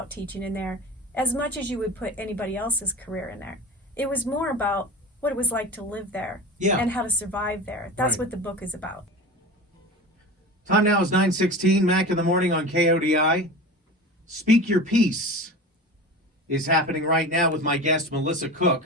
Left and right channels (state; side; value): normal; both; correlation 0.32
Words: teaching in there, as much as you would put anybody else's career in there. It was more about what it was like to live there, Yeah. and how to survive there. That's Right. what the book is about. Time now is 9:16, Mac in the morning on KODI. Speak Your Piece is happening right now with my guest, Melissa